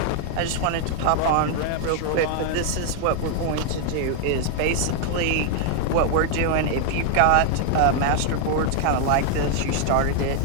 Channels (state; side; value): different; both; correlation 0.00